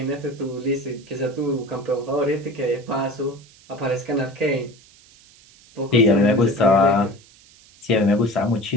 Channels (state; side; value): noise; right; hiss, 26 dB below the sound